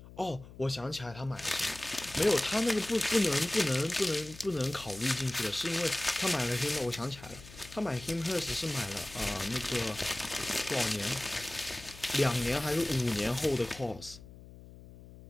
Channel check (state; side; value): noise; left; hum, 18 dB below the sound